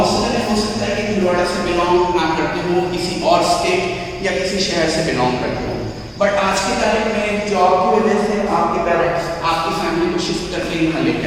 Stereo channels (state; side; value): identical; both; correlation 1.00